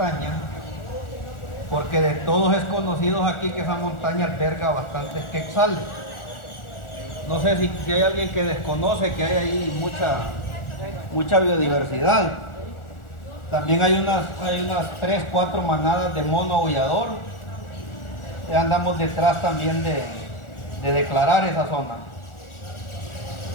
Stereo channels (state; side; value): late; right; 1.4 ms